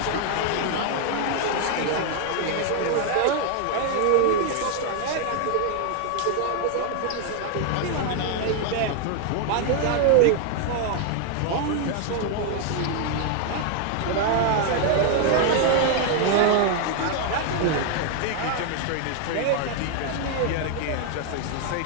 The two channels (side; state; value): both; different; correlation 0.00